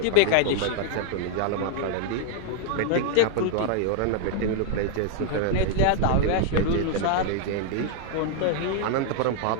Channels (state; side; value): different; both; correlation 0.00